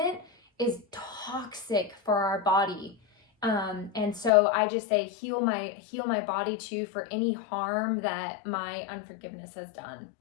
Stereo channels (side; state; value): right; drops out; at 4.3 s